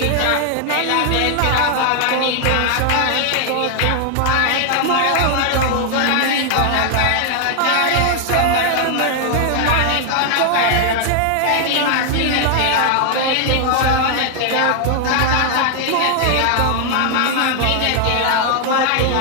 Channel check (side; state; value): both; different; correlation 0.00